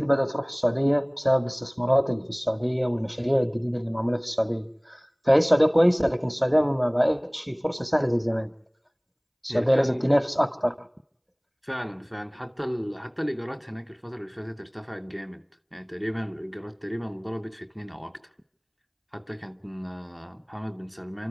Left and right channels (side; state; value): both; identical; correlation 1.00